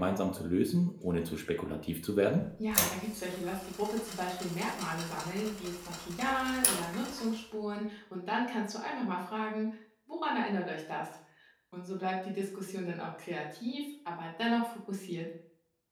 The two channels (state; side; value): identical; both; correlation 1.00